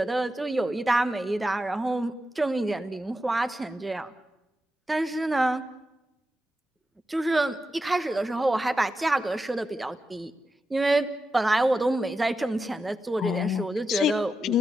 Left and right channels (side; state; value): both; normal; correlation 0.89